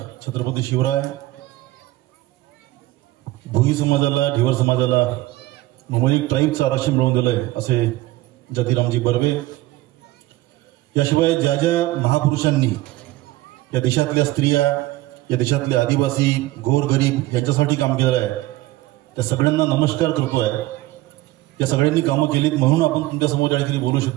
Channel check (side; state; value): left; quieter; 17.7 dB